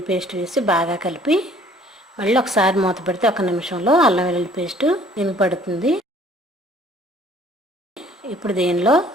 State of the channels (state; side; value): normal; both; correlation 0.56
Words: పేస్ట్ వేసి బాగా కలిపి మళ్ళీ ఒకసారి మూత పెడితే 1 నిమిషంలో అల్లం వెల్లుల్లి పేస్ట్ దీనికి పడుతుంది. ఇప్పుడు దీనిలో